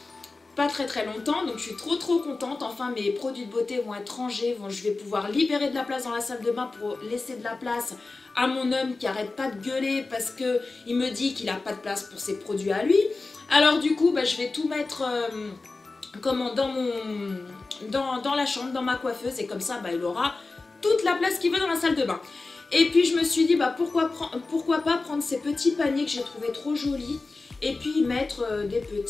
pas très longtemps. Donc je suis trop contente. Enfin mes produits de beauté vont être rangés. Je vais pouvoir libérer de la place dans la salle de bain pour laisser de la place à mon homme qui arrête pas de gueuler parce qu'il me dit qu'il n'a pas de place pour ses produits à lui. Alors du coup, je vais tout mettre dans la chambre, dans ma coiffeuse, et comme ça, il aura toute la place qu'il veut dans la salle de bain. Et puis je me suis dit, pourquoi pas prendre ces petits paniers que j'ai trouvé trop jolis, et puis y mettre des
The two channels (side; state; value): right; quieter; 3.6 dB